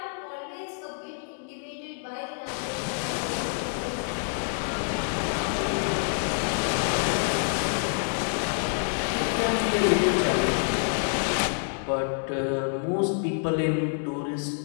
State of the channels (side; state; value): right; silent; 60 dB below the other